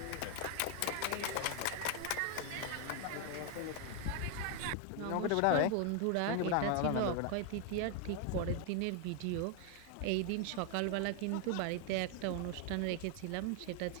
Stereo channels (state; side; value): different; both; correlation 0.00